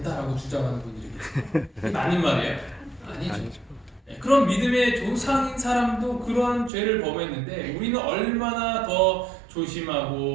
주장하는 분들이 계세요. 이게 맞는 말이에요? 아니죠. 그런 믿음의 조상인 사람도 그러한 죄를 범했는데 우리는 얼마나 더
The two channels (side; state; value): left; drops out; at 6.7 s